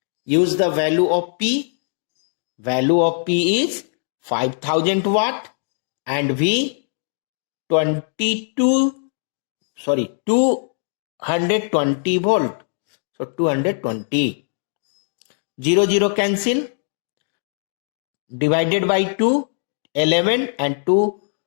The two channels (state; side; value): silent; right; digital silence